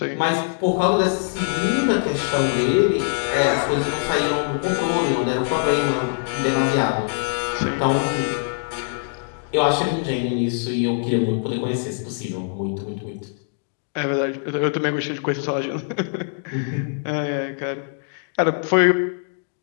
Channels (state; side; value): silent; right; digital silence